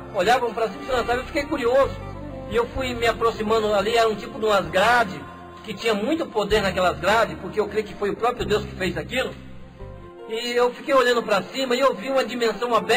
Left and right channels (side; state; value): both; identical; correlation 1.00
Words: olhavam para cima e se lançavam. Eu fiquei curioso. E eu fui me aproximando ali, era um tipo de umas grades, que tinha muito poder naquelas grades, porque eu creio que foi o próprio Deus que fez aquilo. E eu fiquei olhando para cima e eu vi uma dimensão